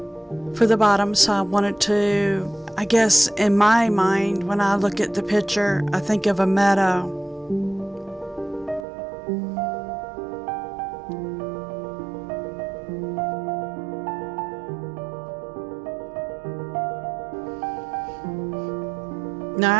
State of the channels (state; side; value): drops out; left; at 8.8 s